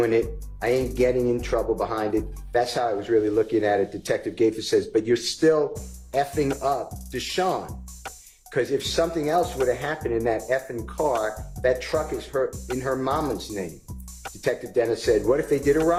it. I ain't getting in trouble behind it. That's how I was really looking at it. Detective Gaither says, but you're still effing up Deshaun. Because if something else would have happened in that effing car, that truck is in her mama's name. Detective Dennis said, what if they did a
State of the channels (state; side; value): identical; both; correlation 1.00